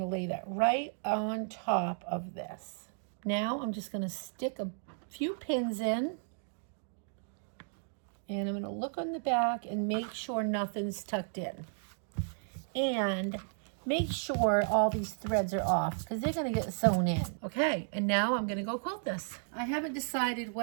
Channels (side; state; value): left; silent; 55 dB below the other